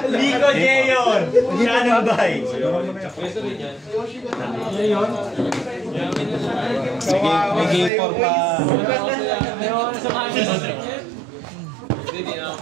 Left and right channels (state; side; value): drops out; left; at 7.9 s